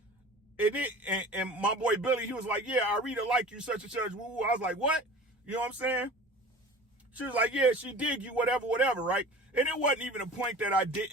And my boy Billy, he was like, yeah, I really like you, such and such. Woo. I was like, what? You know what I'm saying? She was like, yeah, she dig you, whatever, right? And it wasn't even a point that I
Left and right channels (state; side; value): normal; both; correlation 0.40